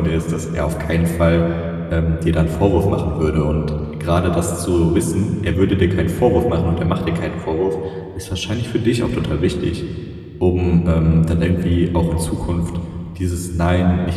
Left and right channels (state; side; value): identical; both; correlation 1.00